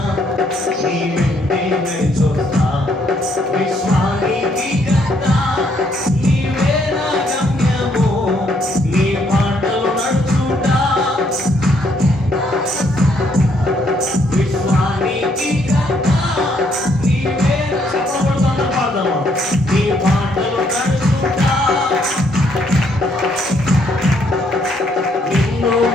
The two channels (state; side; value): normal; both; correlation 0.70